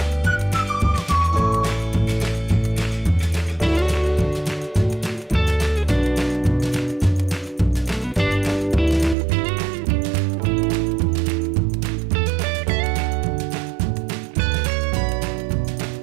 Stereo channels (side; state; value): left; drops out; at 9.2 s